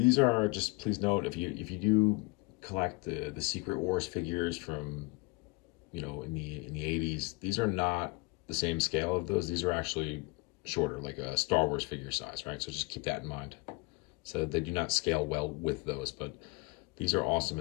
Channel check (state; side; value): quieter; right; 26.2 dB